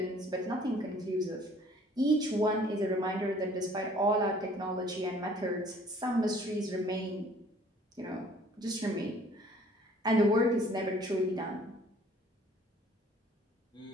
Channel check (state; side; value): normal; both; correlation 0.55